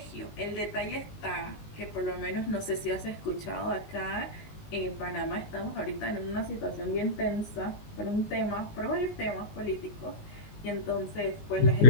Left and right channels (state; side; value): late; right; 19 ms